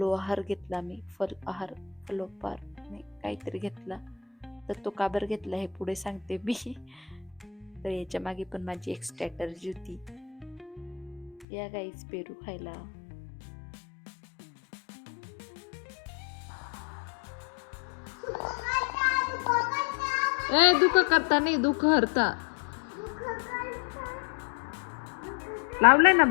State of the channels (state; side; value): drops out; right; at 11.5 s